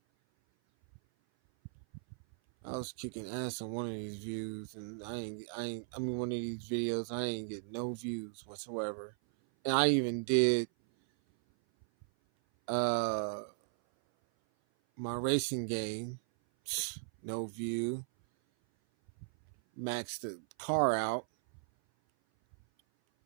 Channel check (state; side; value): silent; left; 53 dB below the other